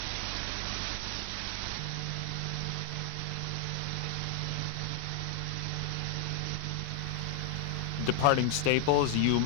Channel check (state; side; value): different; both; correlation 0.00